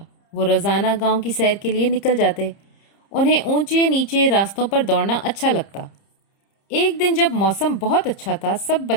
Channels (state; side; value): late; right; 30 ms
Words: वो रोज़ाना गांव की सैर के लिए निकल जाते। उन्हें ऊंचे नीचे रास्तों पर दौड़ना अच्छा लगता। एक दिन जब मौसम बहुत अच्छा था, सब